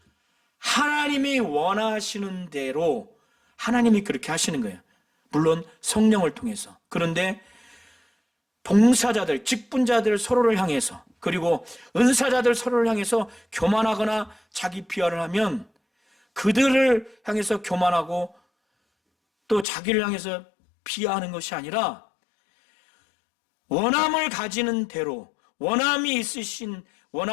하나님이 원하시는 대로 하나님이 그렇게 하시는 거예요. 물론 성령을 통해서. 그런데 봉사자들, 직분자들 서로를 향해서, 그리고 은사자들 서로를 향해서 교만하거나 자기 비하를 하면 그들을 향해서 교만하고 또 자기를 향해서 비하하는 것이 아니라 원함을 가지는 대로, 원함이 있으신,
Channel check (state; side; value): drops out; right; at 19.7 s